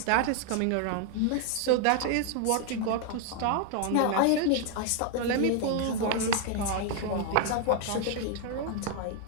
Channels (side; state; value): both; different; correlation 0.00